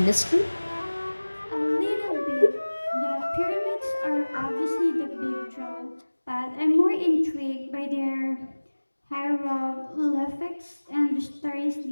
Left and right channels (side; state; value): both; inverted; correlation -1.00